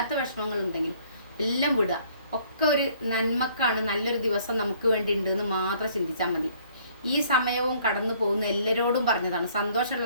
വിഷമങ്ങൾ ഉണ്ടെങ്കിലും എല്ലാം വിടുക. ഒക്കെ ഒരു നന്മക്കാണ്, നല്ലൊരു ദിവസം നമുക്ക് വേണ്ടി ഉണ്ട് എന്ന് മാത്രം ചിന്തിച്ചാൽ മതി. ഈ സമയവും കടന്നു പോകുന്ന എല്ലാവരോടും പറഞ്ഞതാണ്,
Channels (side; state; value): both; inverted; correlation -0.60